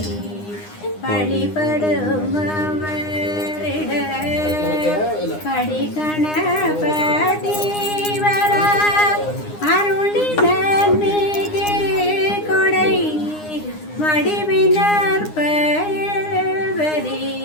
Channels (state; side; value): late; right; 9.8 ms